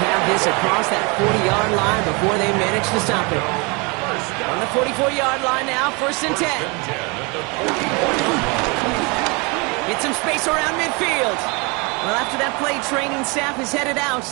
have this across that 40-yard line before they manage to stop it. On the 44-yard line now, 1st and 10. Get some space around midfield. Well, after that play, training staff is headed out.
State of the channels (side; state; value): left; quieter; 29.6 dB